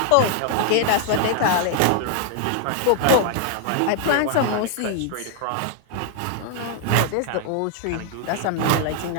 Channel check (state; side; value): different; both; correlation 0.00